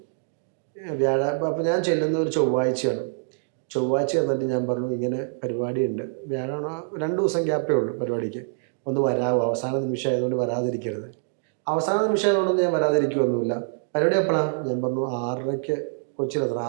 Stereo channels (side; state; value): left; silent; digital silence